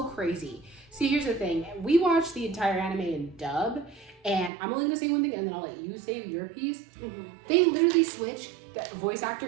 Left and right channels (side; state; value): left; drops out; at 4.5 s